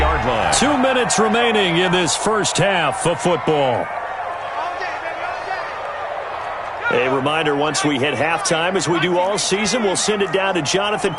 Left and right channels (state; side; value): identical; both; correlation 1.00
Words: line. 2 minutes remaining in this first half of football. A reminder, once we hit halftime, as we do all season, we'll send it down to Jonathan